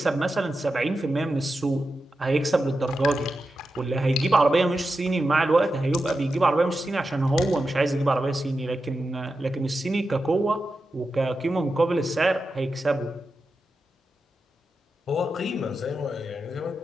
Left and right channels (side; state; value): both; normal; correlation 0.90